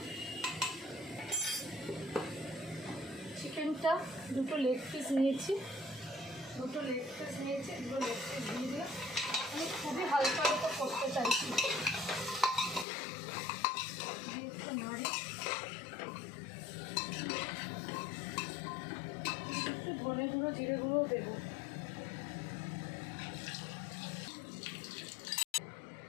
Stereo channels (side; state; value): right; drops out; at 12.9 s